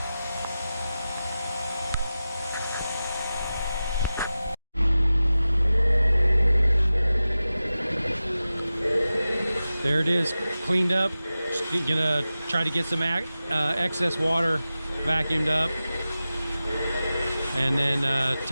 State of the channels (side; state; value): both; inverted; correlation -0.94